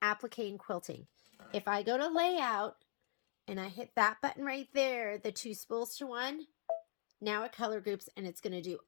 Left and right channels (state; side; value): silent; right; digital silence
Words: applique and quilting. If I go to layout and I hit that button right there, the two spools to one, now it color groups, and it's going to do